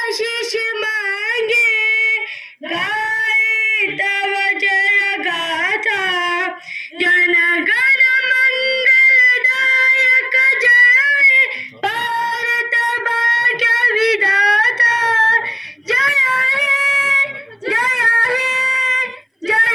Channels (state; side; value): identical; both; correlation 1.00